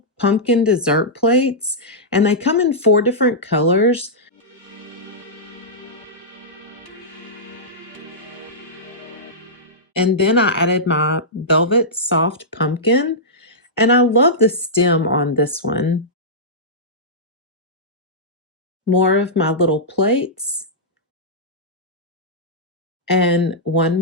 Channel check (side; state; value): both; normal; correlation -0.12